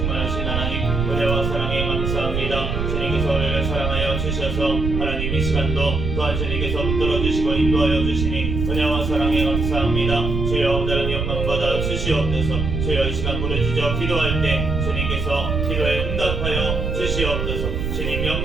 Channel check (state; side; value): noise; right; rumble, 2 dB below the sound